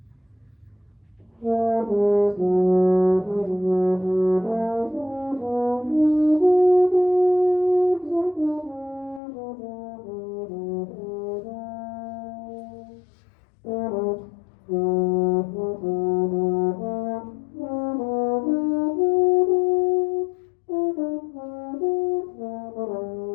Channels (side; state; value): right; drops out; at 9.2 s